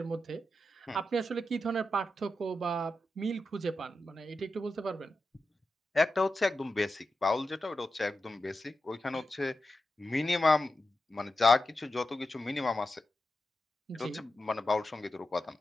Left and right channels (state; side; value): normal; both; correlation 0.90